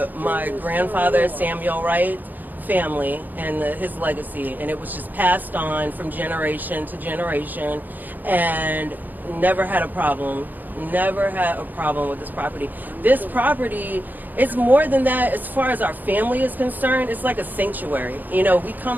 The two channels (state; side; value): late; left; 0.085 ms